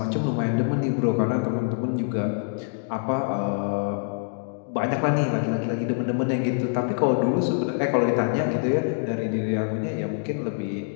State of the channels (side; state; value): right; silent; digital silence